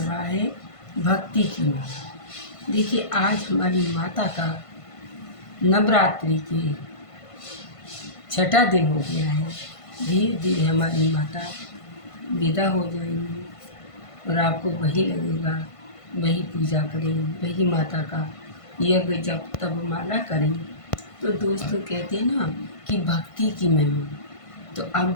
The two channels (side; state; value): right; late; 1.5 ms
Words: है भक्ति की माँ। देखिए, आज हमारी माता का नवरात्रि के छठा दिन हो गया है। धीरे धीरे हमारी माता विदा हो जाएंगी और आपको वही लगेगा, वही पूजा करें, वही माता का यज्ञ जब तब माला करें। तो दोस्तों, कहते हैं ना कि भक्ति की महिमा। तो अब